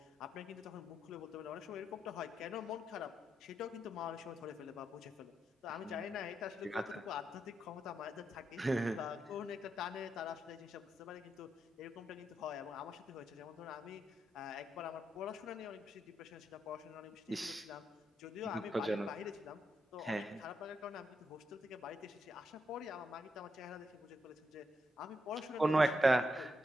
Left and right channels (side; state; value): both; normal; correlation 0.82